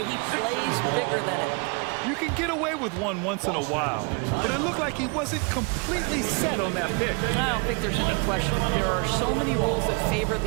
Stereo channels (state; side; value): quieter; left; 32.1 dB